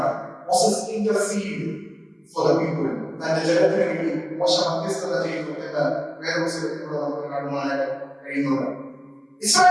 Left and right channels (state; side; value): identical; both; correlation 1.00